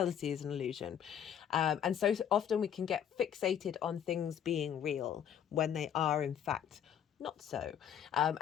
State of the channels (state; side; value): quieter; right; 9.1 dB